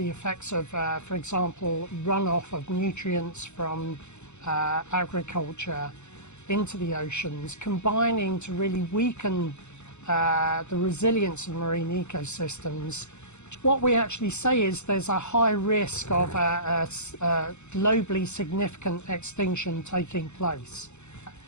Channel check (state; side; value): late; right; 0.82 ms